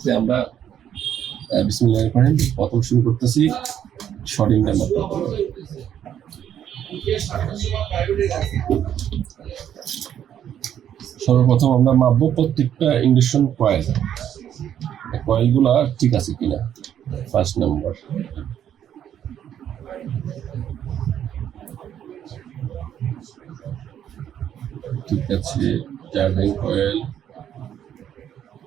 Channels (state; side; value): quieter; left; 9.9 dB